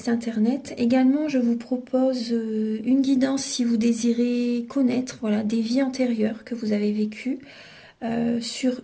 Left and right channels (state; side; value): identical; both; correlation 1.00